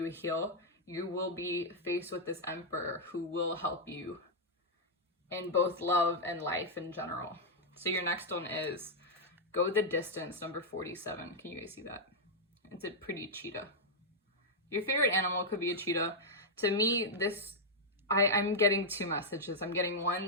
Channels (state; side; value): normal; both; correlation -0.04